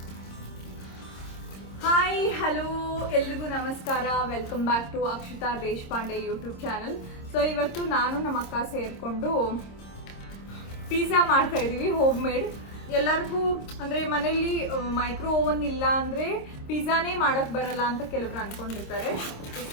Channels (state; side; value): late; right; 26 ms